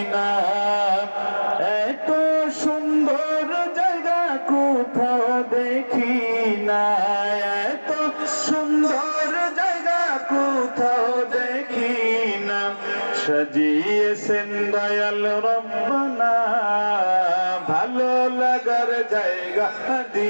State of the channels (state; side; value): inverted; both; correlation -1.00